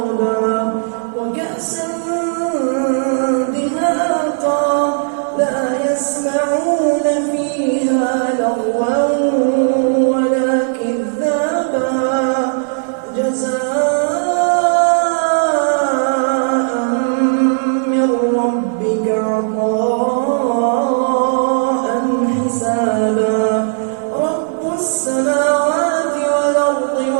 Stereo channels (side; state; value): left; silent; 62 dB below the other